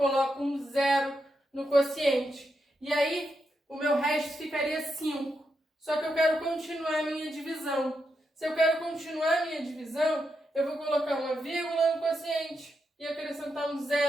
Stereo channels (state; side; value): normal; both; correlation 0.84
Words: um 0 no quociente. E aí, o meu resto ficaria 5. Só que eu quero continuar a minha divisão. Se eu quero continuar a minha divisão, eu vou colocar uma vírgula no quociente e acrescentar um